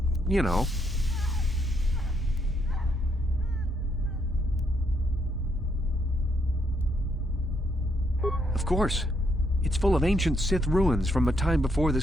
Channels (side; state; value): both; normal; correlation 0.75